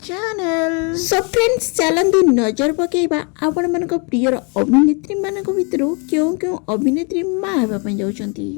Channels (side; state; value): right; quieter; 35.0 dB